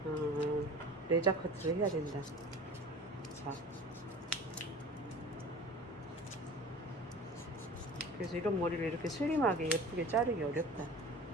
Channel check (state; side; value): normal; both; correlation 0.40